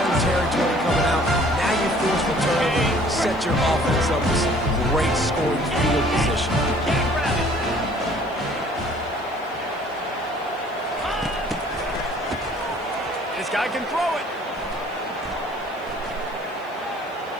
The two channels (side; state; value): right; noise; hiss, 29 dB below the sound